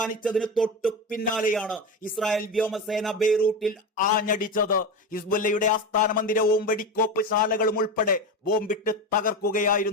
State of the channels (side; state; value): both; normal; correlation 0.20